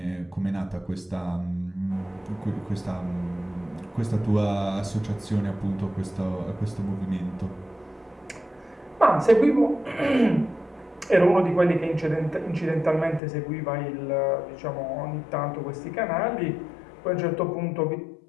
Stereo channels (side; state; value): right; drops out; at 13.2 s